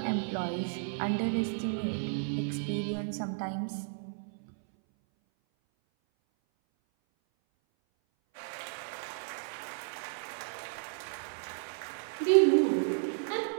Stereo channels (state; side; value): silent; left; 56 dB below the other